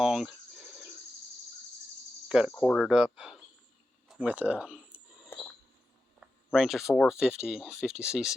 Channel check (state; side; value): normal; both; correlation 0.91